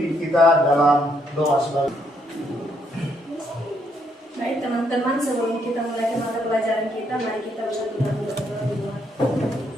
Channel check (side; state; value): both; normal; correlation 0.73